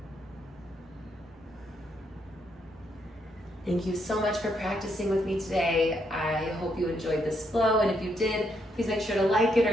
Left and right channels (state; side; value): normal; both; correlation 0.76